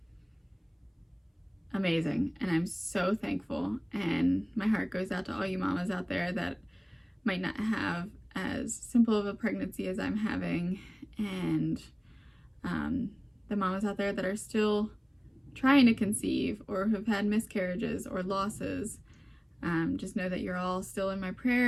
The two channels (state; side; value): identical; both; correlation 1.00